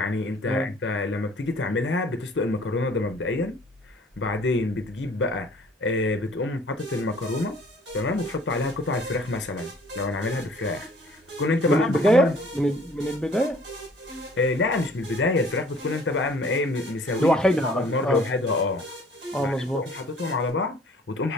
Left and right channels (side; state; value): both; normal; correlation 0.54